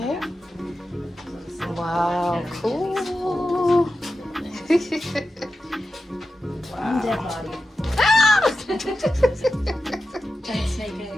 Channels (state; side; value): normal; both; correlation 0.92